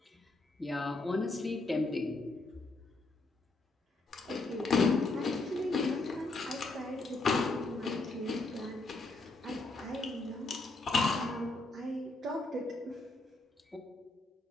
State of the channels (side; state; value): right; quieter; 3.1 dB